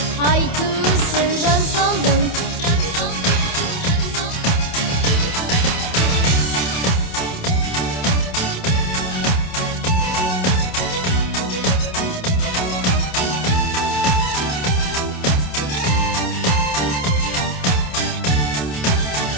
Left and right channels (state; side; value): late; right; 27 ms